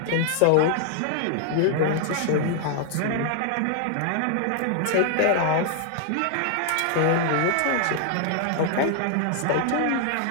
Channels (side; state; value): both; different; correlation 0.00